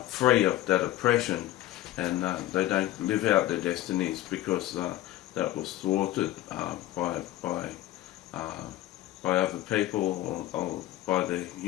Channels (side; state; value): right; quieter; 14.9 dB